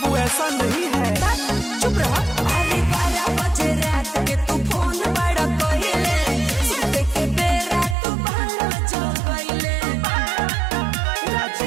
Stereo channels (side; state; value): left; drops out; at 8.0 s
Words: ऐसा नहीं है। चुप रहा। अरे 12 बजे रात के तू फोन बड़ा कइले सुते के बेरा तू बड़ा जगइले। रात